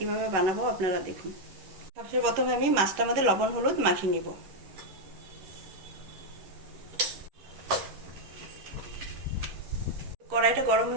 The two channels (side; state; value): left; late; 11 ms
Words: বানাবো আপনারা দেখুন। সবচেয়ে প্রথমে আমি মাছটার মধ্যে লবণ হলুদ মাখিয়ে নিব। কড়াইটা গরম